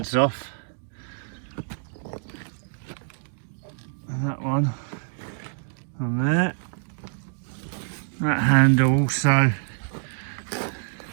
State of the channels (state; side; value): silent; left; digital silence